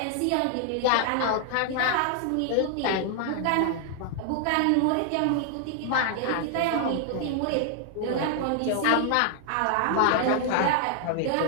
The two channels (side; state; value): both; different; correlation 0.00